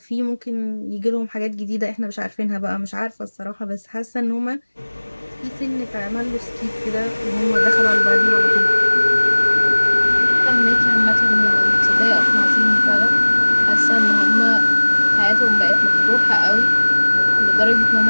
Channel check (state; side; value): inverted; both; correlation -1.00